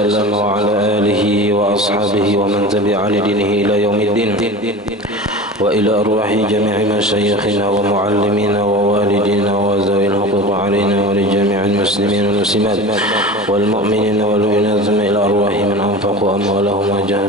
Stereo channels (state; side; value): normal; both; correlation 0.33